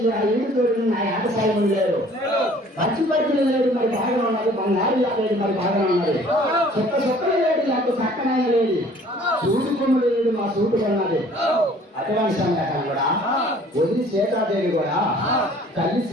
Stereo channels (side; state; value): both; normal; correlation 0.54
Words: ఆ ఇంటి తోడు నా ఆటసాయం లేరు, పచ్చి పచ్చులు లేడు మరి బాగా ఉన్నది, బంగారు లేదు మరి బాగా ఉన్నది, చుక్కలు లేడు నాకు చక్కనైన లేదు, సూటి కొమ్ములు లేడు మా సూటు కొన్నది. అటువంటి సంఘటన కూడా వదిలి సీతాదేవి కూడా తల్లి